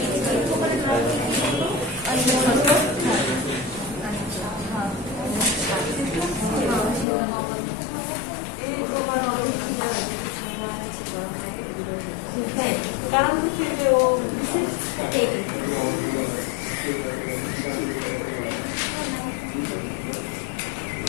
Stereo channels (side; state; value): right; drops out; at 7.1 s